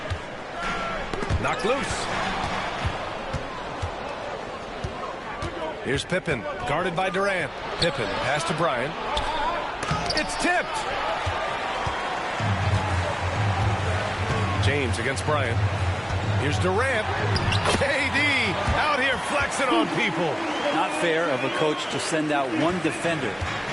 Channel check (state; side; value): identical; both; correlation 1.00